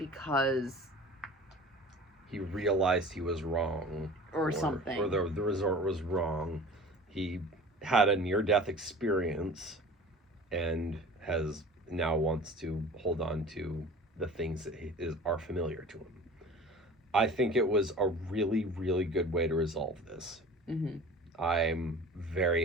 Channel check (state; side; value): normal; both; correlation 0.41